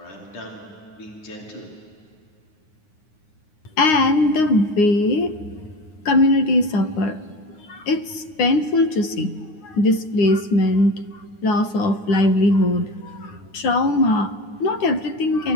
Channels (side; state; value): right; late; 9.7 ms